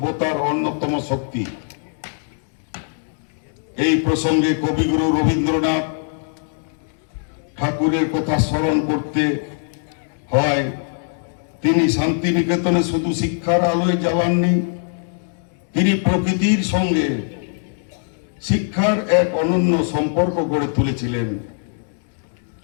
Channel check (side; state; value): right; silent; 60 dB below the other